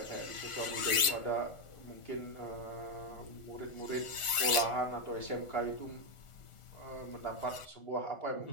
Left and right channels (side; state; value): right; late; 1.4 ms